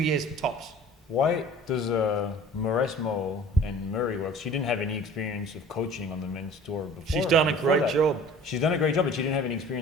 tops. Why does Mauresmo and Murray work? She didn't have any experience of coaching on the men's tour before. She's done a great job. She's done a great job, but she didn't have any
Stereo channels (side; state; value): both; normal; correlation 0.46